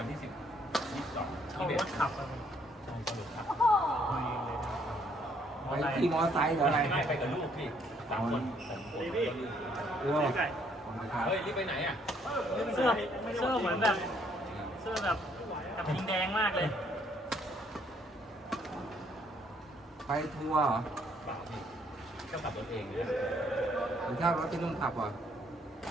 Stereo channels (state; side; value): normal; both; correlation 0.67